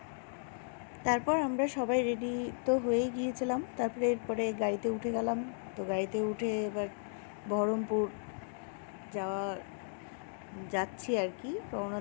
তারপর আমরা সবাই রেডি তো হয়েই গিয়েছিলাম। তারপরে এরপরে গাড়িতে উঠে গেলাম। তো গাড়িতে উঠে এবার বহরমপুর যাচ্ছি আর কি, রওনা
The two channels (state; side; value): silent; right; digital silence